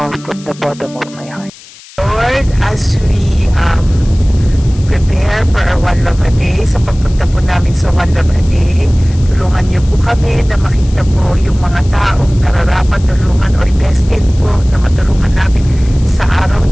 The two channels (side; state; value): left; noise; hiss, 21 dB below the sound